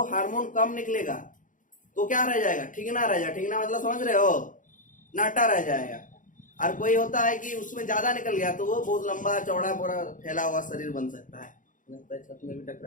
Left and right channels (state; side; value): late; right; 0.38 ms